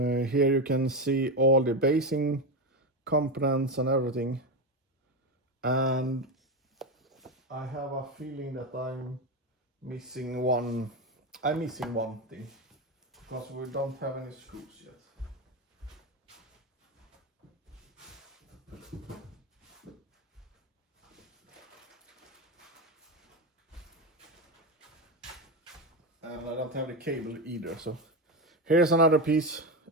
you can see all the basing components and everything, and I have a feeling that I'm missing one thing, because we don't have any screws yet. And I don't have the cable either, so here's another piece.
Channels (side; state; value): both; normal; correlation 0.14